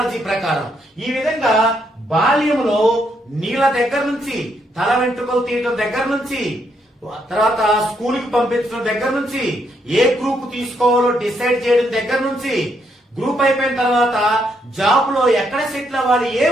ప్రకారం ఈ విధంగా బాల్యంలో నీళ్ళ దగ్గర నుంచి, తల వెంట్రుకలు తీయడం దగ్గర నుంచి, తర్వాత స్కూల్ కి పంపించడం దగ్గర నుంచి, ఏ గ్రూప్ తీసుకోవాలో డిసైడ్ చేయడం దగ్గర నుంచి, గ్రూప్ అయిపోయిన తర్వాత జాబ్ లో ఎక్కడ సెటిల్ అవ్వాలి, ఏ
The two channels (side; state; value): both; normal; correlation 0.75